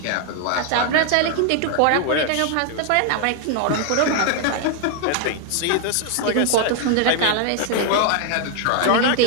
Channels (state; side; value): different; both; correlation 0.00